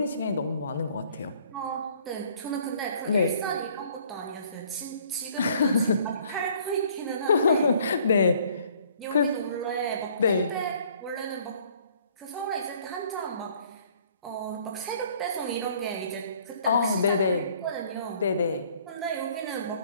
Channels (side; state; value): both; inverted; correlation -0.58